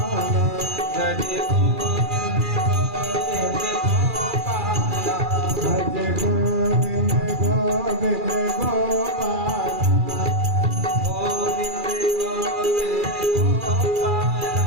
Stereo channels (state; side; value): late; left; 2.4 ms